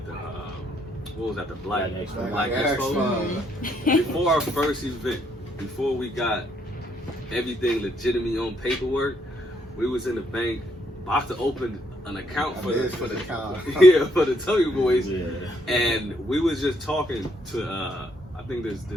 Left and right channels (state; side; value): normal; both; correlation 0.72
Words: the what was that, the Black Expo? Before our first event, before we got everything legitimate on paperwork, we was in the bank about to open an account for the TummyBoyz. Yeah. And we was just talking to I think this